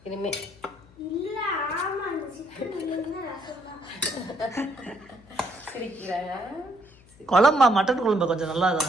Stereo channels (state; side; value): noise; left; hum, 26 dB below the sound